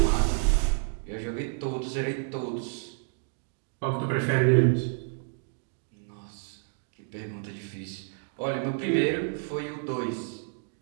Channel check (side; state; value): left; silent; digital silence